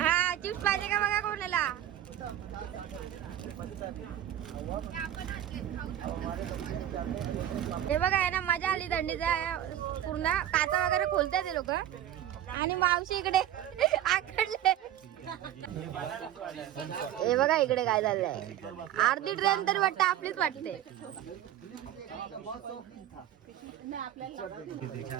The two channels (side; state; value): left; quieter; 11.6 dB